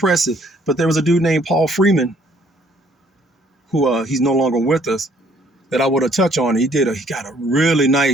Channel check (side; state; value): both; normal; correlation 0.63